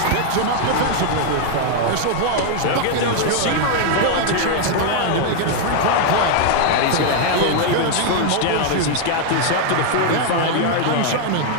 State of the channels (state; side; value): different; both; correlation 0.00